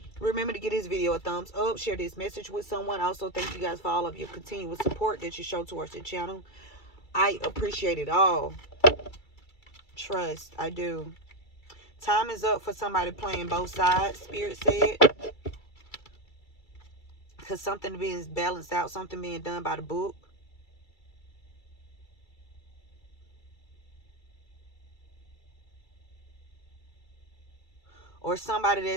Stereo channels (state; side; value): late; right; 2.3 ms